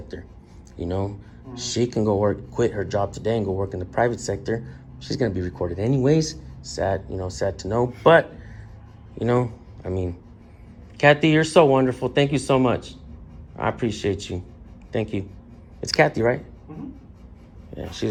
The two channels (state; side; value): identical; both; correlation 1.00